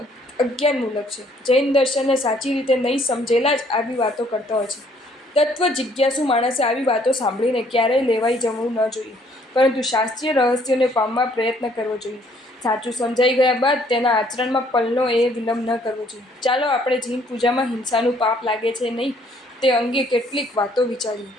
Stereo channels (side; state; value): both; normal; correlation 0.63